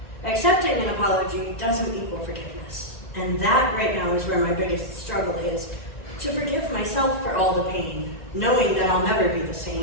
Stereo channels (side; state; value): right; late; 1.9 ms